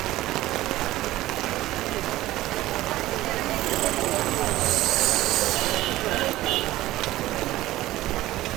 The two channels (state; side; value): quieter; left; 16.2 dB